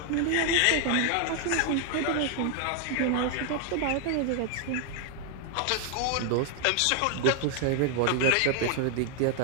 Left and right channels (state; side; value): different; both; correlation 0.00